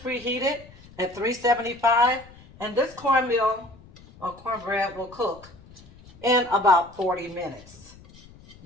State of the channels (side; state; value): left; noise; rumble, 22 dB below the sound